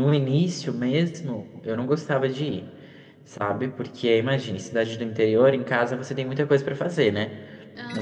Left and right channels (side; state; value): both; identical; correlation 1.00